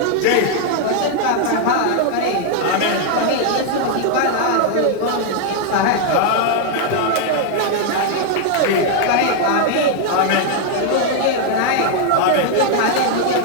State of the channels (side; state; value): both; different; correlation 0.00